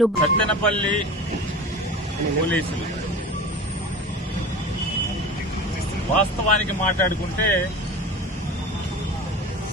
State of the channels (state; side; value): normal; both; correlation 0.33